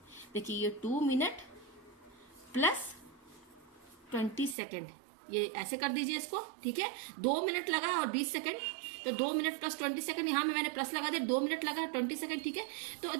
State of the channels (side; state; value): left; drops out; at 4.5 s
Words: देखिए ये 2 मिनट प्लस 20 सेकंड, ये ऐसे कर दीजिए इसको, ठीक है। 2 मिनट लगा और 20 सेकंड, तो 2 मिनट प्लस 20 सेकंड, यहाँ में मैंने प्लस लगा दिया, 2 मिनट लगा 20 सेकंड, ठीक है। तो